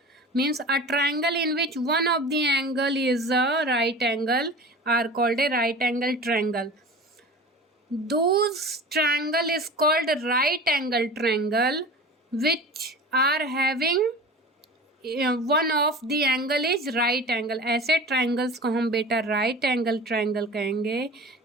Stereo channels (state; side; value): normal; both; correlation 0.36